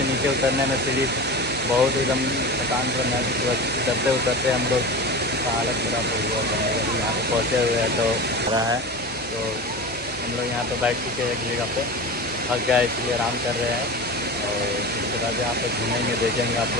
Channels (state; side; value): normal; both; correlation 0.29